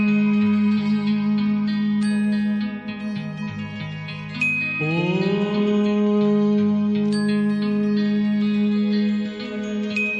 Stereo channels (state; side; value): identical; both; correlation 1.00